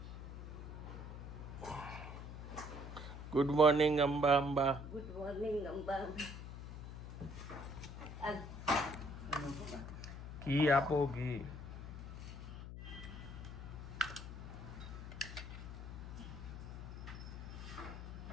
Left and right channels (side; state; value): left; noise; hum, 9 dB below the sound